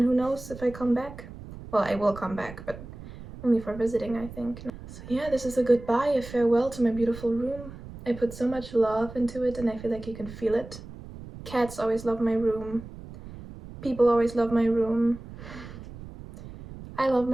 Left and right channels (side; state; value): right; noise; rumble, 14 dB below the sound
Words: who knows if I come back. Well, I will come back, but only for visiting, I think. So yeah, this is a goodbye, a farewell to my beautiful room. I put so much love into it, and I feel like you can feel it. Cats always love my room. People always love my room. I love